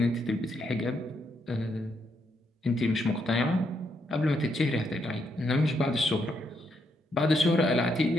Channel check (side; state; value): both; normal; correlation 0.77